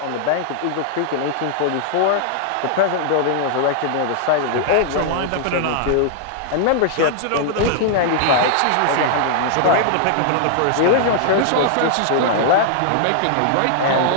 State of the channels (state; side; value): different; both; correlation -0.01